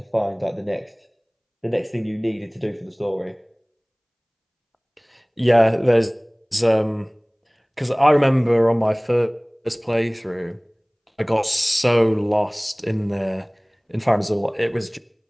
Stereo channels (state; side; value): identical; both; correlation 1.00